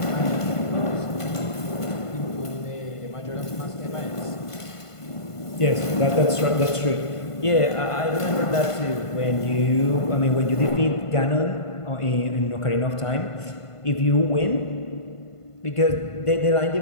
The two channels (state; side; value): late; right; 1.5 ms